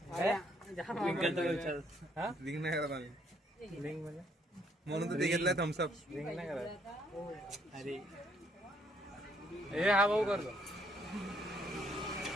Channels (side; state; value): both; normal; correlation 0.69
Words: जाम लिंक आमरस विचार. हा लिंक नाही करत आम्ही. लिंक म्हणजे म्हणून तर ते घेतलंय थम्सअप. लिंक नाही करत. अरे हे हा भाऊ करतो.